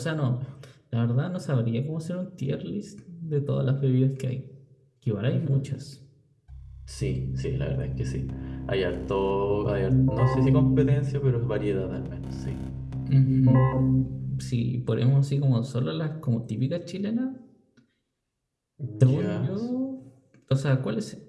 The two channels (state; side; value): identical; both; correlation 1.00